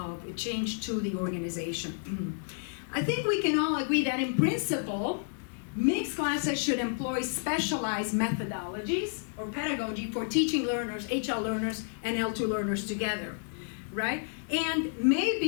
change to the organization. I think we can all agree that in principle, mixed classes should employ specialized methodologies or pedagogy for teaching learners, HL learners, and L2 learners together, right? And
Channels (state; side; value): silent; right; digital silence